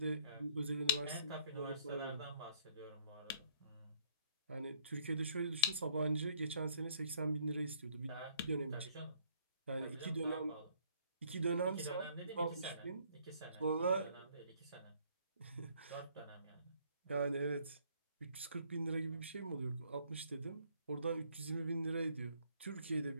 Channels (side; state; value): both; inverted; correlation -0.63